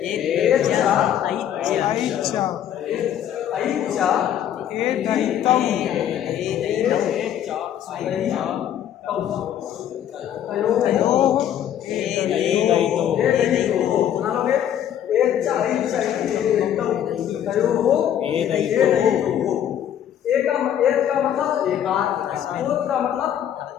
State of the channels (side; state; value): right; quieter; 10.2 dB